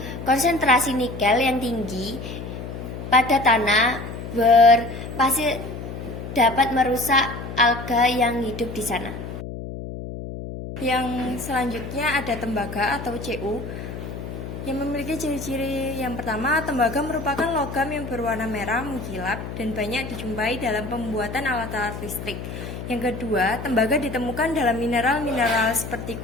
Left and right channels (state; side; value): noise; left; hum, 8 dB below the sound